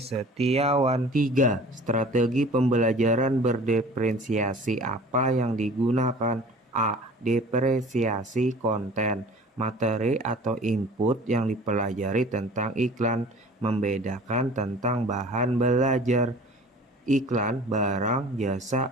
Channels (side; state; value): both; normal; correlation 0.46